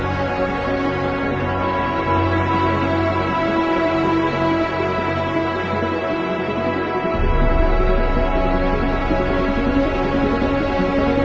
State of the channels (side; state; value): both; identical; correlation 1.00